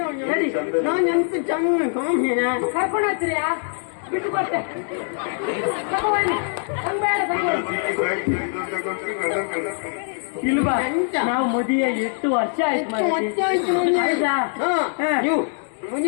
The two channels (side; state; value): right; silent; 57 dB below the other